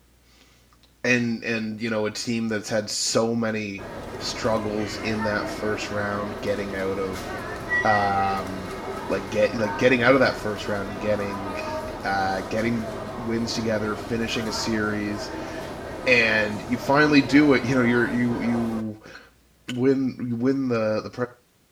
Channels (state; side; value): identical; both; correlation 1.00